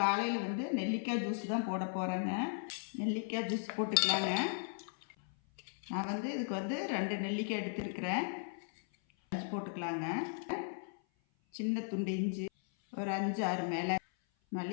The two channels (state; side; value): silent; right; 53 dB below the other